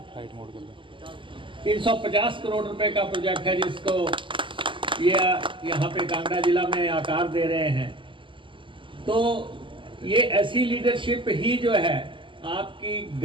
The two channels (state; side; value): late; left; 0.25 ms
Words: 350 करोड़ रुपए का प्रोजेक्ट है, जिसको ये यहाँ पे कांगड़ा जिला में आकार दे रहे हैं। तो ये ऐसी लीडरशिप ही जो है, आपकी